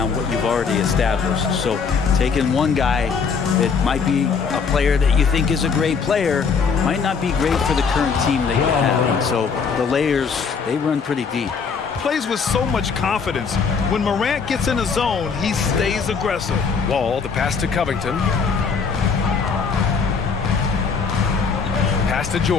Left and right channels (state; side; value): quieter; right; 5.6 dB